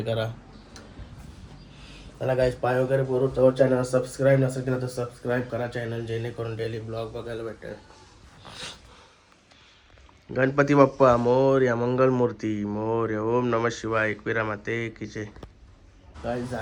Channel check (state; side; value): identical; both; correlation 1.00